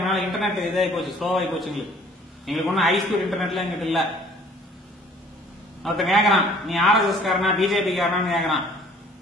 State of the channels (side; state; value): both; normal; correlation 0.54